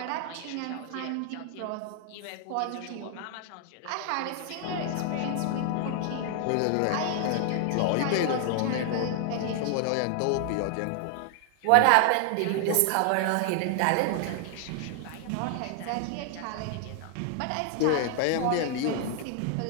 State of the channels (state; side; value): different; both; correlation 0.00